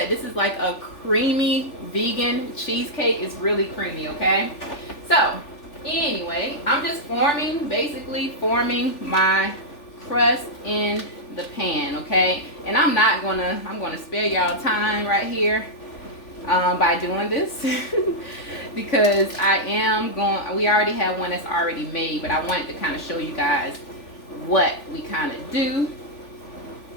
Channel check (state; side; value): late; right; 3.4 ms